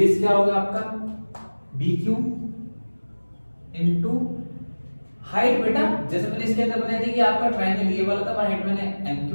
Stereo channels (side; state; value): both; inverted; correlation -1.00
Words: क्या होगा आपका बी क्यू इंटू हाइट। बेटा जैसे मैंने इसके अंदर बताया था कि आपका ट्रायंगल ये वाला था, हाइट मैंने एम